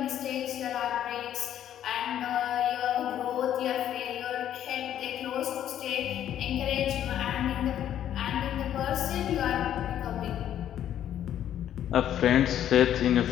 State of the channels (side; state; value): right; quieter; 10.8 dB